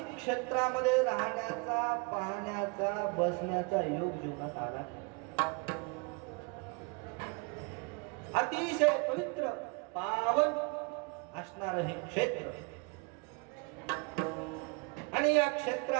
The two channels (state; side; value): quieter; left; 32.1 dB